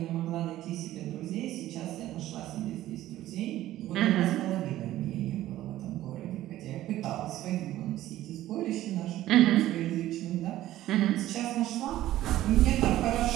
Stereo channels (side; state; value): left; quieter; 14.4 dB